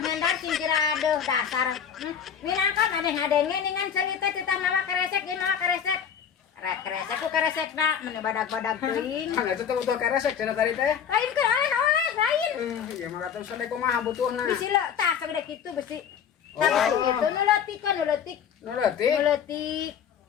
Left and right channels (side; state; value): right; quieter; 7.9 dB